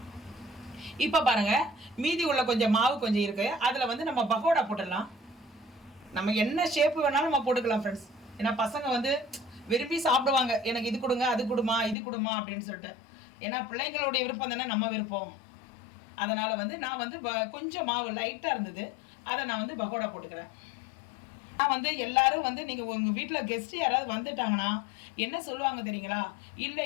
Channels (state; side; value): drops out; right; at 12.0 s